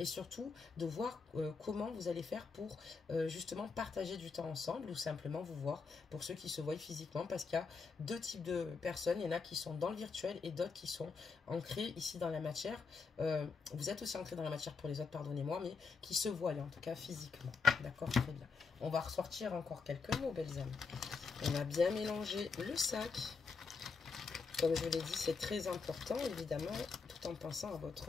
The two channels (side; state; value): right; quieter; 4.9 dB